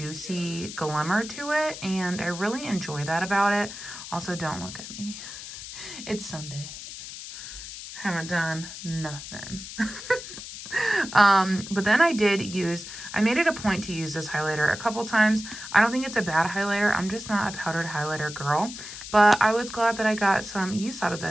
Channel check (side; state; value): left; noise; hiss, 11 dB below the sound